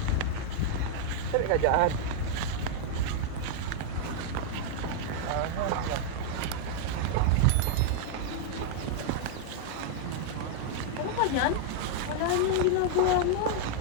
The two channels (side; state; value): both; different; correlation -0.01